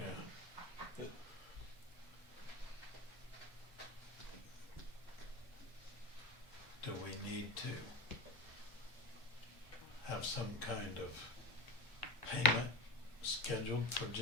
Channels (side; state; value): both; normal; correlation 0.25